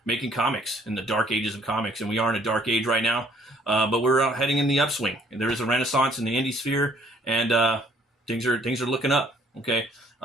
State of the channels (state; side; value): normal; both; correlation 0.61